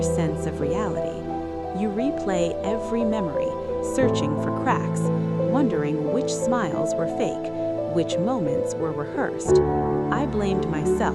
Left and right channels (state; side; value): identical; both; correlation 1.00